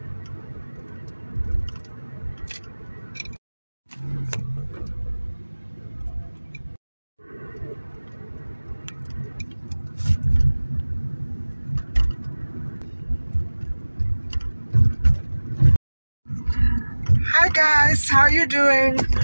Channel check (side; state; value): both; inverted; correlation -1.00